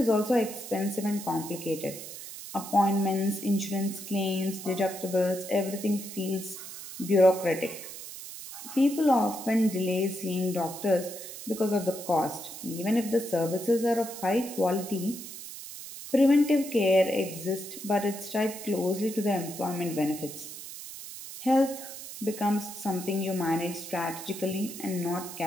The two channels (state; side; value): noise; right; hiss, 11 dB below the sound